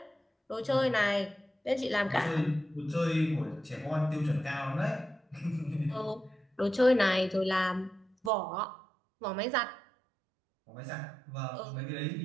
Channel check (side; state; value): left; drops out; at 8.3 s